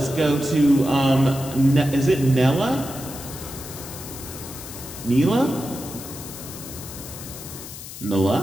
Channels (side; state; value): left; noise; hiss, 12 dB below the sound